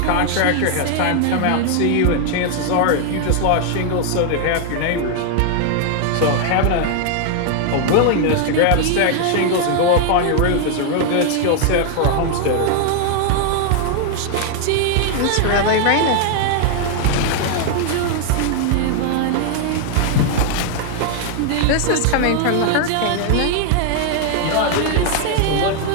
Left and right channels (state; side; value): different; both; correlation 0.00